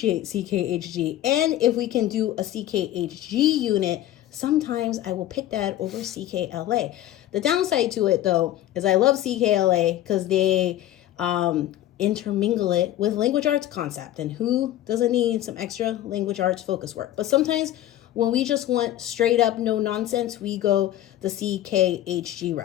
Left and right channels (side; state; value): right; quieter; 13.3 dB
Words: CKHG. And if we can do a CKHG unit, sometimes I will pick that over CKLA. The downside to it, though, is I love CKLA because they intermingle it with language arts concept, and who doesn't need some extra language arts focus work? But sometimes when we just want straight up no nonsense, we go the CKHG